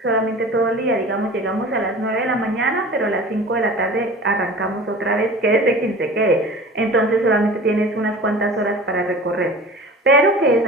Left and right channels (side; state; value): both; normal; correlation 0.39